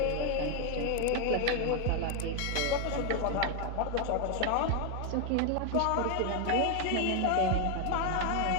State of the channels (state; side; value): different; both; correlation 0.01